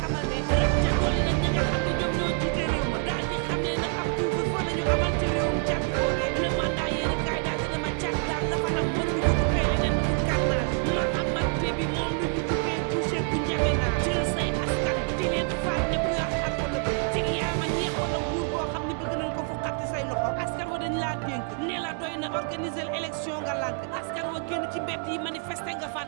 xamal ne rab ca dolli nag ñi nga xam ne ñoom ñoo jiite réew ma daal di xam ne nag ab couvre-feu la ñu amal ci réewum Caat boobee le mandat yéene kaay daal dina ma Caat daal dafa am mën nga ko duppee leneen pour carnage Mahamad Déby moom lu ñu duppee boucher bu njame naa jël say askan di leen faat ne ku yor xar wala bëy cig yaa ma ñeex wala nguur boo xam ne bëgg nañ ko fu xatti say loxo askan wa dañ laa dénk ne la doy na organiser élection nga lànk askan wa génn ci mbedd yi manifester nga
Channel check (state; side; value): quieter; left; 39.5 dB